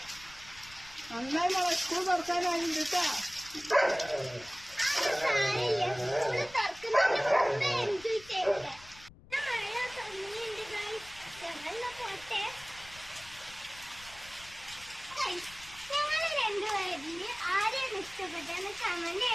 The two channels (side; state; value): left; noise; rumble, 21 dB below the sound